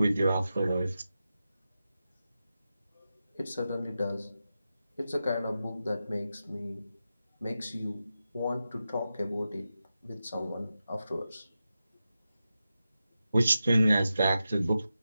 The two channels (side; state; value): both; inverted; correlation -0.91